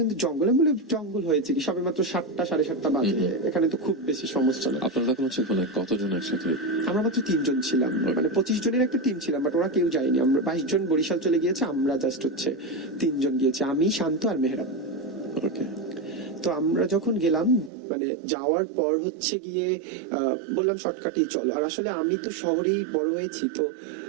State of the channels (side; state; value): left; drops out; at 17.7 s